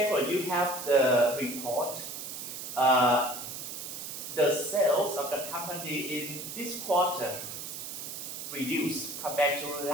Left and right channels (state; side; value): noise; right; hiss, 8 dB below the sound